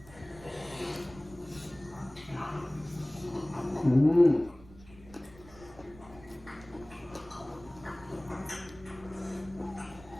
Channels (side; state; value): right; noise; rumble, 21 dB below the sound